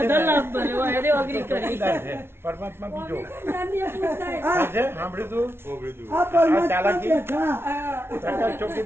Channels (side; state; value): left; late; 0.12 ms